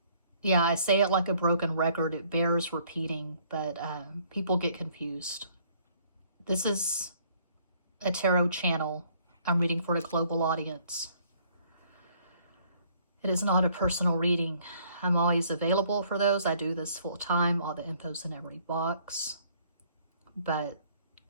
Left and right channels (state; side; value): inverted; both; correlation -0.61